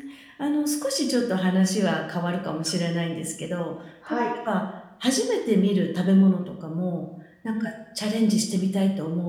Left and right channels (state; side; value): identical; both; correlation 1.00